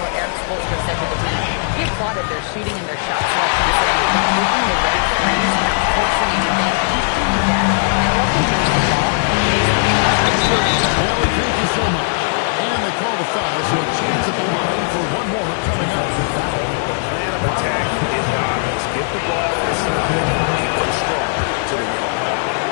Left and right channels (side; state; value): right; silent; digital silence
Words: what Eric Spoelstra said to the team. He applauded their shooting and their shot selection, saying, taking the right threes, not forcing anything. Keep doing that, and they'll continue to fall. Allen, thank you so much. And they call the foul, so a chance at the line for one more coming out. The plan of attack is obvious. Get the ball inside and go strong to the rim.